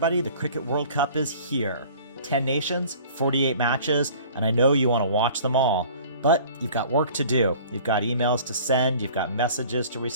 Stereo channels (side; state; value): both; inverted; correlation -0.48